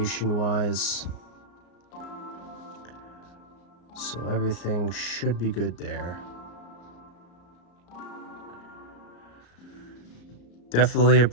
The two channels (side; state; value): right; late; 34 ms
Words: wise. So everything should be good there. Definitely a